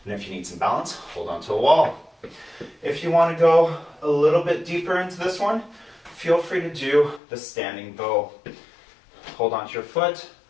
And if you need some balance, hold on to a wall. If you want to go a little bit deeper into this one, feel free to do the standing bow. Hold on to your foot,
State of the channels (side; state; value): right; drops out; at 7.2 s